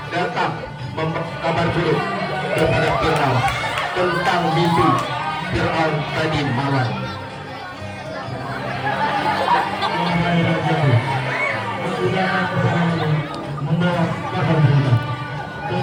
datang memberitahu buruk kepada Fir'aun tentang mimpi Fir'aun tadi malam. Membawa kabar berita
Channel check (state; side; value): identical; both; correlation 1.00